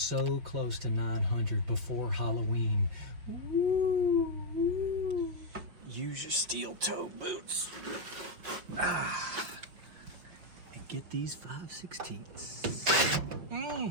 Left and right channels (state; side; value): late; left; 5.9 ms